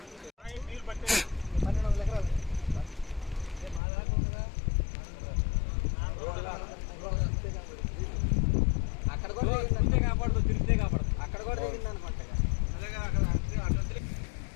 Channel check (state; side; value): drops out; right; at 3.8 s